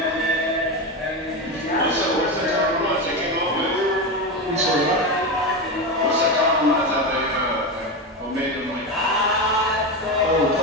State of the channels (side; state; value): both; normal; correlation 0.16